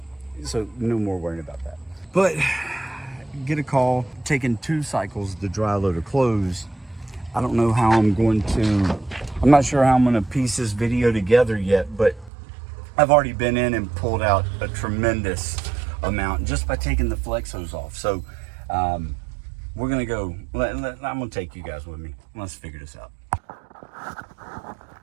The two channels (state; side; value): drops out; left; at 12.3 s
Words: So no more worrying about that. But get a call. Taking 2 cycles to dry load of clothes. I don't know how I'm not sure how I'm going to piece this video together yet, but I've already been in and pulled out a tremendous amount just by taking the flex hose off. So we're going to go, I'm going to take you guys with me. Let's figure this out.